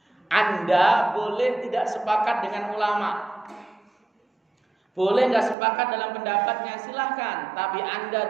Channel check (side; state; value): left; drops out; at 5.6 s